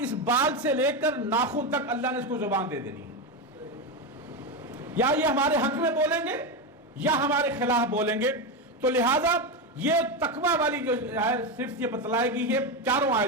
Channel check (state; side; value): normal; both; correlation 0.12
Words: اس بال سے لے کر ناخن تک اللہ نے اس کو زبان دے دینی ہے. یا یہ ہمارے حق میں بولیں گے یا ہمارے خلاف بولیں گے. تو لہٰذا یہ تقویٰ والی جو ہے صرف یہ بتلائے گی یہ 4